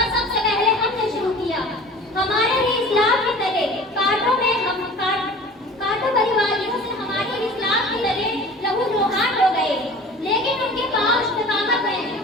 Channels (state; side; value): normal; both; correlation 0.42